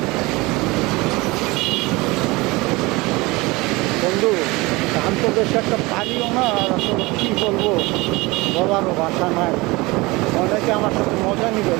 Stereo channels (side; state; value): left; quieter; 22.8 dB